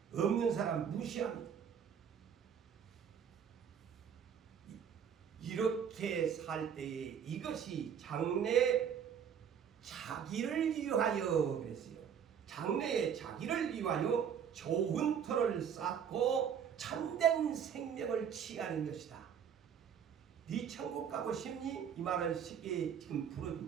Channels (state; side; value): quieter; left; 8.0 dB